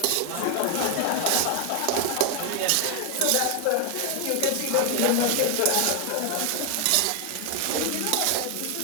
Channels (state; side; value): different; both; correlation 0.00